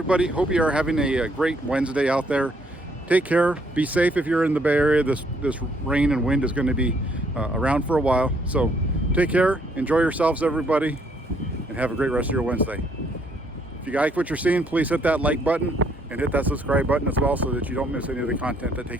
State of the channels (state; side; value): normal; both; correlation 0.68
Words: Hope you are having a great Wednesday out there. Take care. Be safe if you're in the Bay Area. This rain and wind is going to be around for a while. So take care. Enjoy yourselves, everybody, and have a great rest of your Wednesday. If you like what you're seeing, please hit that like button and hit that subscribe button as well so that you don't miss any of the content that